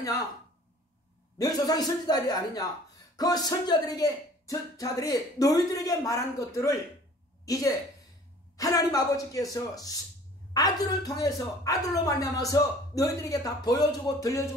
너희 조상이 선지자들이 아니냐, 그 선지자들이 너희들에게 말한 것들을 이제 하나님 아버지께서 아들을 통해서 아들로 말미암아서 너희들에게 다 보여주고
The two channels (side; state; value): both; normal; correlation 0.50